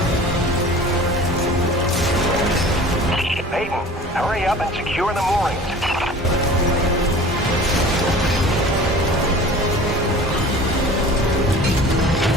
Hurry up and secure the moorings.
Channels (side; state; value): both; normal; correlation 0.42